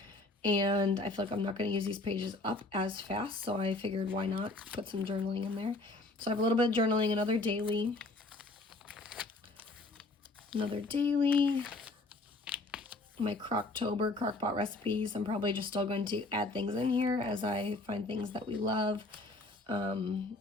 And I feel like I'm not going to use these pages up as fast, so I figured why not put some journaling in there. So I have a little bit of journaling, another daily. My Croctober, Crockpot recipes. I'm probably just still going to add things in here as I find things that we love.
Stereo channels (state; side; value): quieter; right; 3.0 dB